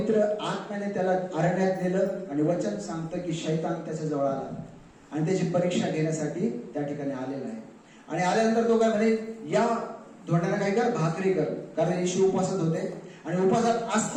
आत्म्याने त्याला अरण्यात नेलं आणि वचन सांगतं की शैतान त्याच्या जवळ आला आणि त्याची परीक्षा घेण्यासाठी त्या ठिकाणी आलेला आहे. आणि आल्यानंतर तो काय म्हणे, या धोंड्याला काय कर, भाकरी कर. कारण येशू उपवासात होते आणि उपवासात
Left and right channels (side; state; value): both; identical; correlation 1.00